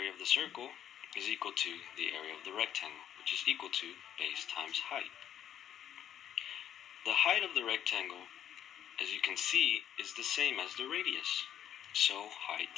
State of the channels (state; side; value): quieter; right; 10.2 dB